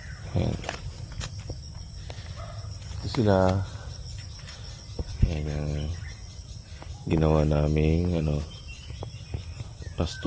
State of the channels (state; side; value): identical; both; correlation 1.00